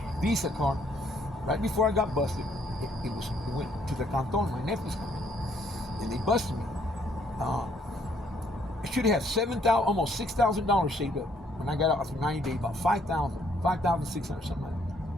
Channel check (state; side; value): normal; both; correlation 0.67